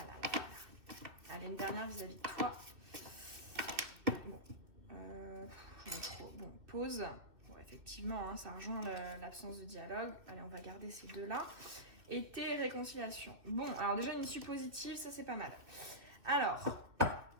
là. Allez, une dernière vis-à-vis de toi. Bon, j'en ai trop. Bon, pause. Bon, effectivement, hein, ça rejoint l'absence de dialogue. Allez, on va garder ces deux-là. Été et réconciliation. Bon, alors déjà une issue positive, ça c'est pas mal. Alors,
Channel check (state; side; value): late; left; 2.5 ms